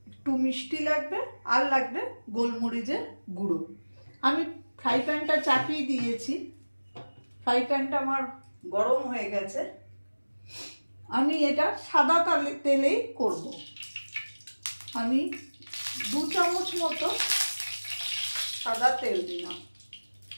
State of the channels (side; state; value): both; inverted; correlation -1.00